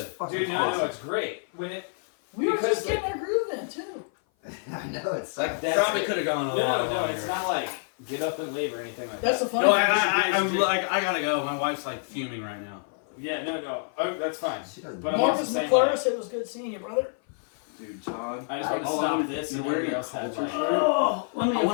Fucking Dude, no, awesome. it's great. When it, We were Because, just getting our groove in too. I know it's That That's probably it. could have gone a no, lot no, longer. it's not like get up and leave or anything like That's the that. funny No, thing. I'm like, I gotta go. My wife's like fuming right now. Yeah, no. Oh, that's fine. She doesn't But know. I'm also Marcus saying, McClure, it was good seeing you, brother. Dude, Todd. I just want to all stop I'm- this you're and wearing everybody a else has culture like, shirt. Oh, let me I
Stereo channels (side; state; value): right; silent; 56 dB below the other